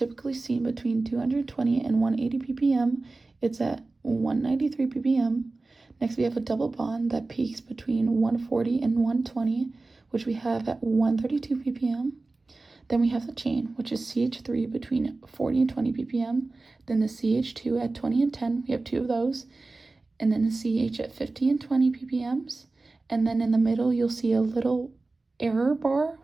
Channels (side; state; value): left; quieter; 3.4 dB